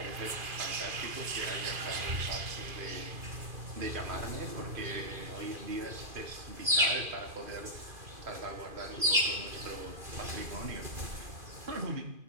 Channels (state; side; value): late; left; 2.5 ms